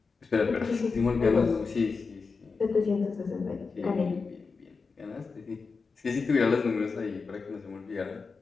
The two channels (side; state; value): right; quieter; 4.7 dB